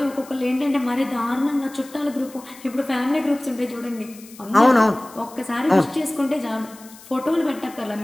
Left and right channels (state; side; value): noise; left; hiss, 21 dB below the sound